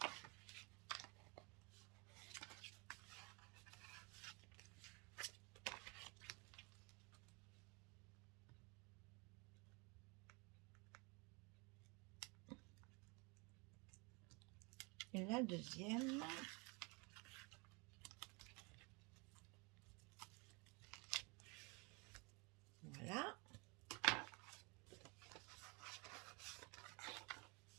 Et la deuxième. Voilà.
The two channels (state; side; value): quieter; left; 29.8 dB